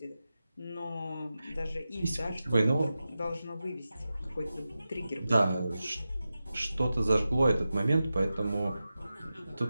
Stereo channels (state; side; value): inverted; both; correlation -0.93